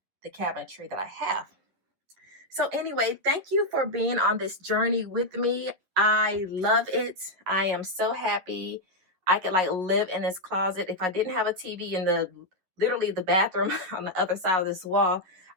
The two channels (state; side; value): late; left; 11 ms